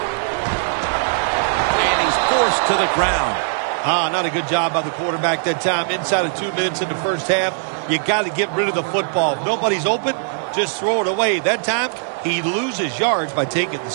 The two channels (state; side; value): silent; left; digital silence